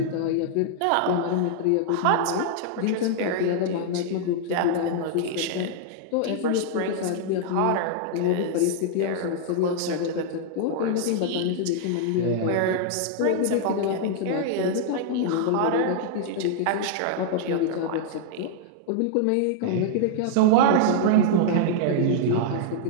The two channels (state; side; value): different; both; correlation -0.01